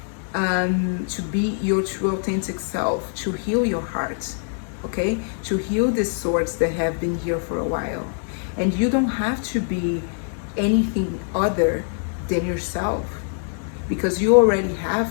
to be your true authentic self, to heal your heart, okay, to heal the swords that have been here for a while. And you don't have to be anything other than yourself. because you already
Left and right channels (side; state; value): right; silent; digital silence